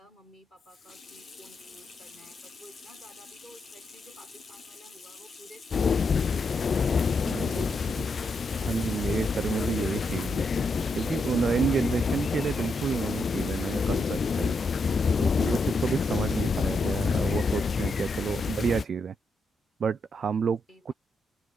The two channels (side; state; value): both; normal; correlation 0.81